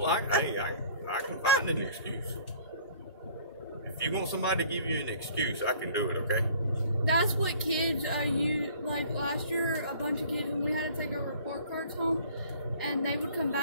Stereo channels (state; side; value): inverted; both; correlation -0.52